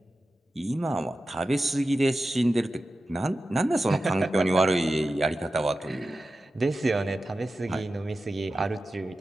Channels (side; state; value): both; normal; correlation 0.93